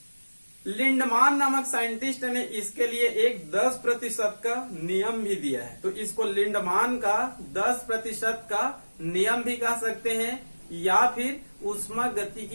लिंडमान नामक साइंटिस्ट ने इसके लिए एक 10% का नियम भी दिया है। तो इसको लिंडमान का 10% का नियम भी कह सकते हैं या फिर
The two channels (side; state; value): both; inverted; correlation -1.00